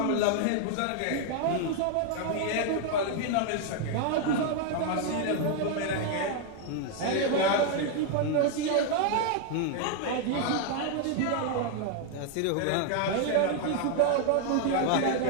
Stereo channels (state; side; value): different; both; correlation 0.00